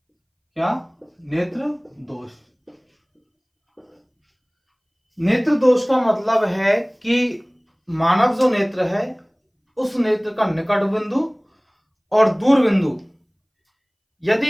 क्या? नेत्र दोष। नेत्र दोष का मतलब है कि मानव जो नेत्र है उस नेत्र का निकट बिंदु और दूर बिंदु,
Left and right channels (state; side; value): identical; both; correlation 1.00